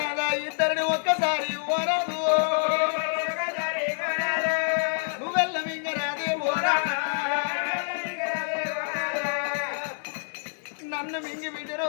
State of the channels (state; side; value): silent; right; digital silence